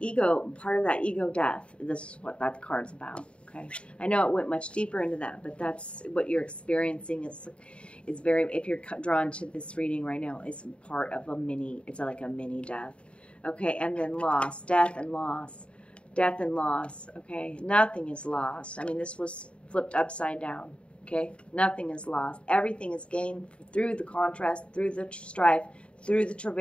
part of that ego death. This is what that card's about, okay? I know it went much deeper into that, but that's what you're experiencing. Is very, if you're drawn to this reading right now, it's part of it's like a mini death, okay? And then loss, death and loss, okay? Nothing is lost. I mean, this was flipped upside down. Okay, nothing is lost. Everything is gained through the contrast, through the strife, through the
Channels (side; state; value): right; late; 0.058 ms